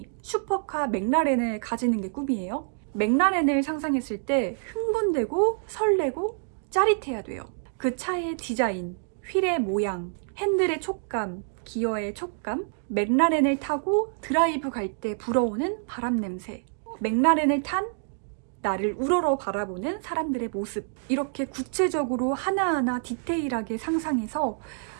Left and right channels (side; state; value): left; silent; digital silence